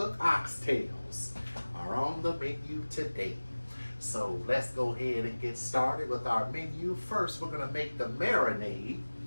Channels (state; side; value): inverted; both; correlation -1.00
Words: oxtails are on the menu today. So let's go ahead and get started with our menu. First, we're going to make the marinade